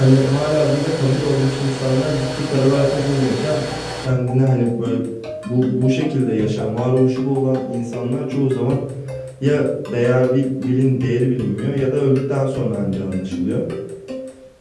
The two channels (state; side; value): identical; both; correlation 1.00